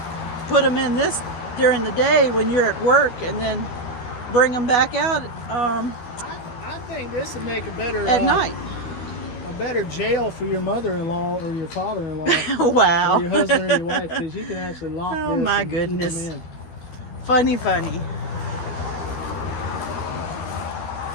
put them in this during the day when you're at work, and then bring them back out I think this would make a better at night. a better jail for your mother-in-law or your father-in-law Wow. or your husband or your wife, because you can actually lock Oh, this my and keep them goodness. in. Funny.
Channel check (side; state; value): right; late; 12 ms